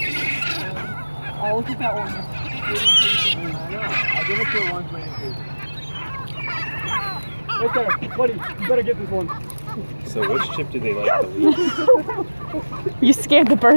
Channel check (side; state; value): both; inverted; correlation -1.00